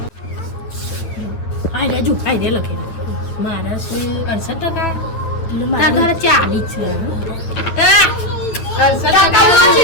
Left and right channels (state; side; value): late; right; 9.2 ms